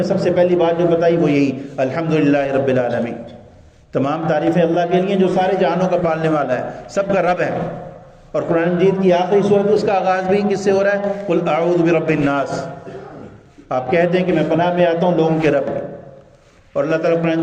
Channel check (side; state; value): both; identical; correlation 1.00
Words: سب سے پہلی بات جو بتائی وہ یہی الحمدللہ رب العالمین. تمام تعریفیں اللہ کے لیے جو سارے جہانوں کا پالنے والا ہے، سب کا رب ہے. اور قرآن مجید کی آخری سورت اس کا آغاز بھی کس سے ہو رہا ہے؟ قل اعوذ برب الناس. آپ کہتے ہیں کہ میں پناہ میں آتا ہوں لوگوں کے رب کے. اور اللہ تعالیٰ قرآن